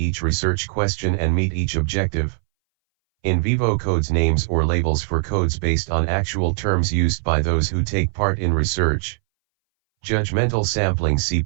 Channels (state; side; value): silent; left; 62 dB below the other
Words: research question and meet each objective. In vivo codes. Names or labels for codes based on actual terms used by those who take part in research. Judgmental sampling. See